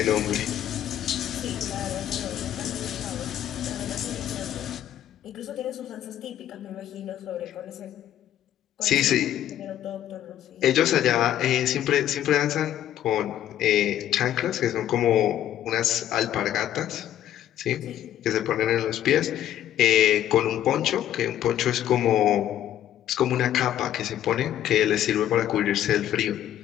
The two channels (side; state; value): right; quieter; 11.6 dB